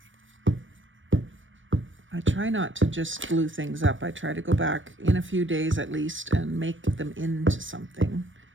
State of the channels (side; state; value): left; late; 0.56 ms